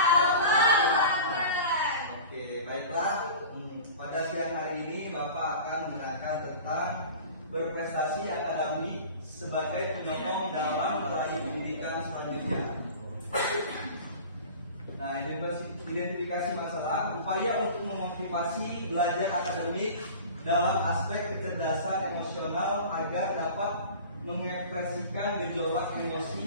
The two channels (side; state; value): both; inverted; correlation -0.38